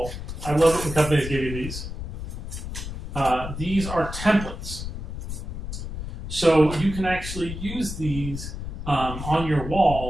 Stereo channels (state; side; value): noise; left; rumble, 7 dB below the sound